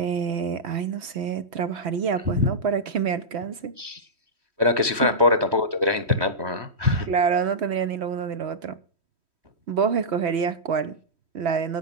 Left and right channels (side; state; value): left; late; 3.1 ms